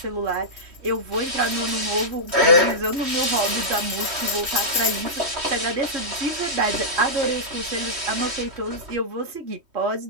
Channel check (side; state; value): left; late; 3.1 ms